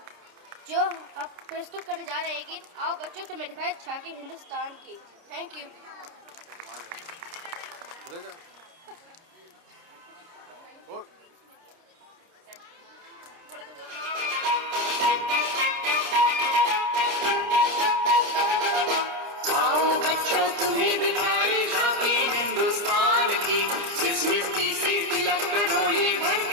जो आप प्रस्तुत करने जा रहे हैं गीत आओ बच्चों तुम्हें दिखाए झांकी हिंदुस्तान की। Thank you. आओ बच्चों तुम्हें दिखाए झांकी हिंदुस्तान की, जिस मिट्टी से तिलक करो ये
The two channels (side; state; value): left; late; 29 ms